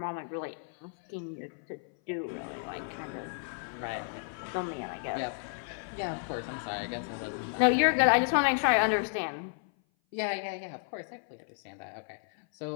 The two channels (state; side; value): silent; right; 56 dB below the other